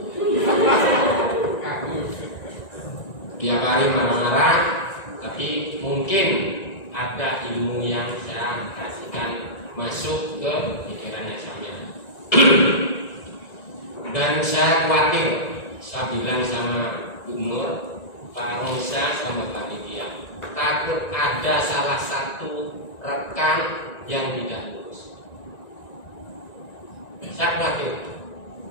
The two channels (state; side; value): late; right; 1.9 ms